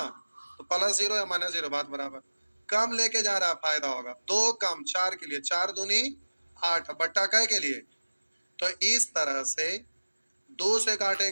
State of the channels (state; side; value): inverted; both; correlation -1.00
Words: तो प्लस 0 या माइनस 0 बात बराबर। कम लेके जा रहा है फायदा होगा, 2 कम 4 के लिए, 4 दूनी 8 बट्टा कै के लिए। तो इस तरह से 2 से